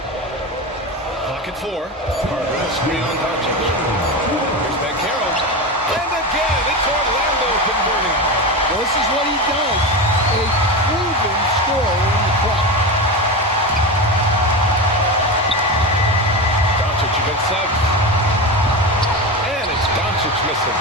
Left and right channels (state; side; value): normal; both; correlation 0.21